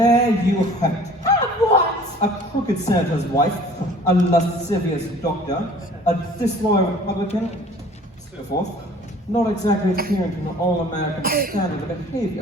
you have it. Have what? A crooked senator's wife, a lascivious doctor, a disloyal Republican, so forth. Not exactly adhering to an all-American standard of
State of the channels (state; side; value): normal; both; correlation 0.50